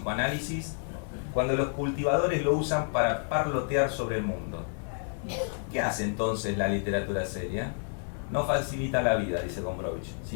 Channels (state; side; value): silent; right; 58 dB below the other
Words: cuando los cultivadores lo usan para parlotear sobre el mundo. ¿Qué hace entonces la literatura seria? No facilita la vida, dice Gombrowicz,